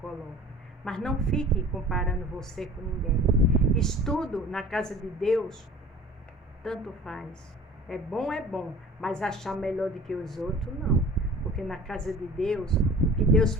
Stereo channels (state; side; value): normal; both; correlation 0.44